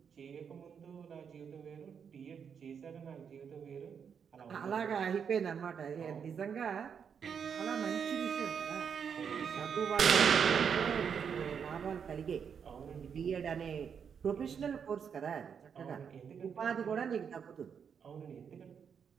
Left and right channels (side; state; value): left; quieter; 7.1 dB